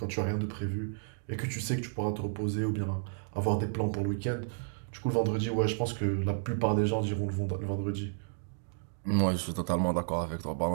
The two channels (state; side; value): silent; left; digital silence